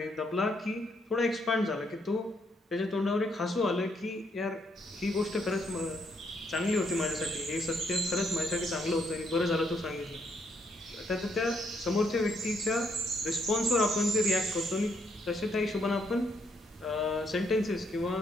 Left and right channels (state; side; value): normal; both; correlation 0.73